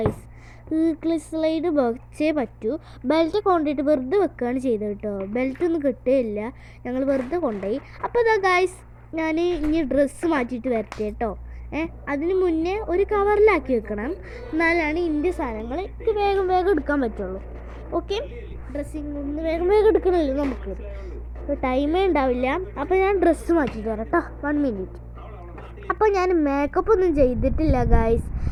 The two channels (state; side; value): identical; both; correlation 1.00